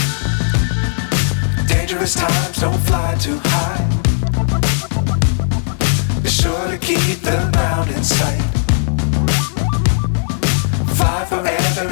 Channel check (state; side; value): silent; right; digital silence